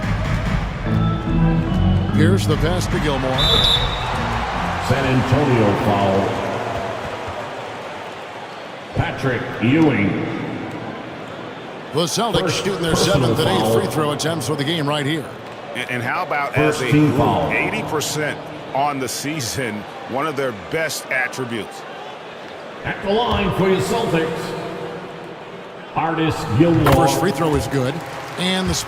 Here's the pass to Gilmore. San Antonio foul. Patrick Ewing. The Celtics shooting their 7th and 8th free throw attempts for the game right here. And how about as a group, 80% on the season, one of their best attributes. At the line for your Celtics, Artis Gilmore. First free throw is good. And the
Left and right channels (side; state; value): both; identical; correlation 1.00